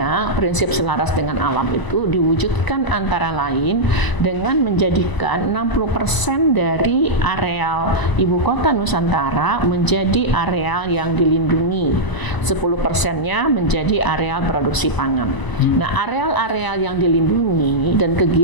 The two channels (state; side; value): late; right; 1.0 ms